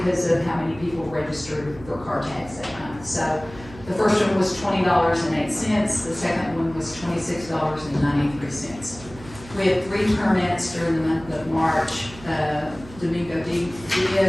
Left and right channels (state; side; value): noise; right; hum, 18 dB below the sound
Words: of how many people registered for car tags that month. So the first one was $20.08. The second one was $26.93. We had 3 permits during the month of March. Domingo